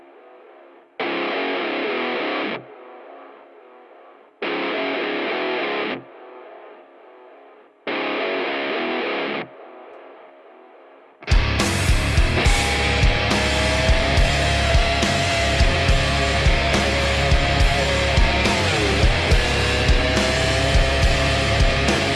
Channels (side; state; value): both; identical; correlation 1.00